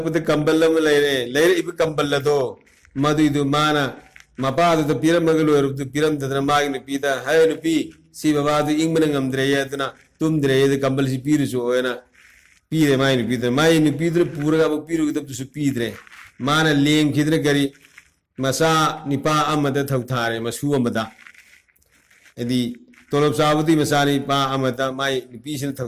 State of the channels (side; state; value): both; identical; correlation 1.00